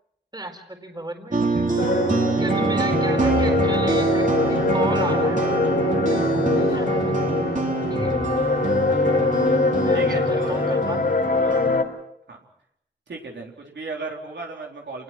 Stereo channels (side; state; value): both; normal; correlation 0.46